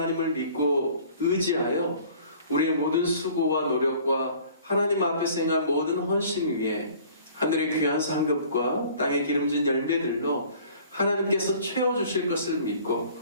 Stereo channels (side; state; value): both; inverted; correlation -0.51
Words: 믿고 의지하여 우리의 모든 수고와 노력과 하나님 앞에서 행한 모든 헌신 위에 하늘의 귀한 상급과 땅의 기름진 열매들로 하나님께서 채워주실 것을 믿고